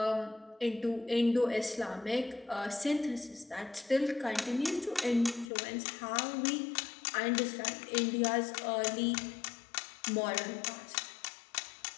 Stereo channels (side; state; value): right; drops out; at 5.5 s